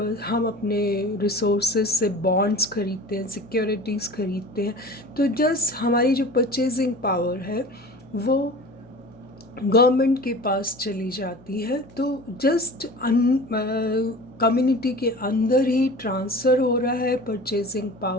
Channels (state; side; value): noise; left; hum, 25 dB below the sound